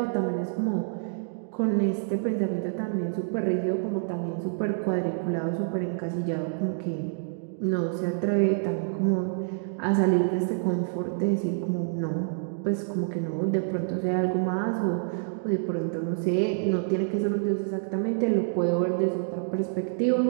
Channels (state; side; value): silent; left; digital silence